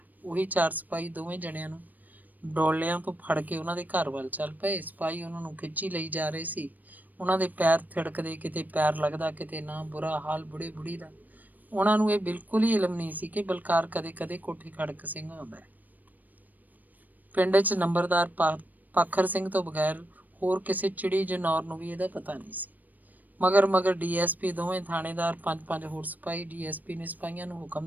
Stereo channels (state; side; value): late; left; 0.083 ms